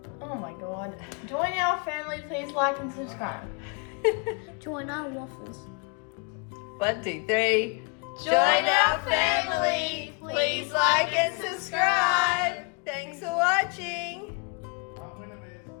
Oh my god. Join our family, please like and subscribe. Join our waffles. 1, 2, 3. Join our family. Please like and subscribe. Thanks for watching.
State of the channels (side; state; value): right; quieter; 36.7 dB